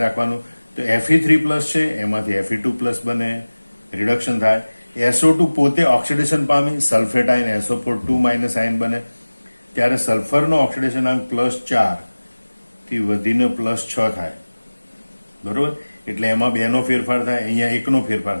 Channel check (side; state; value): both; inverted; correlation -1.00